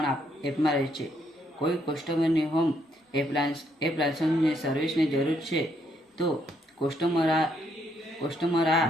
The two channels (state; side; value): normal; both; correlation 0.73